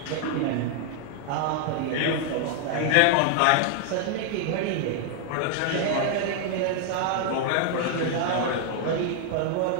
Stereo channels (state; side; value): different; both; correlation 0.00